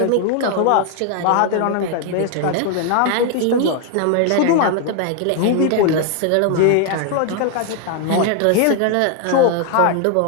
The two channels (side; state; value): both; different; correlation 0.00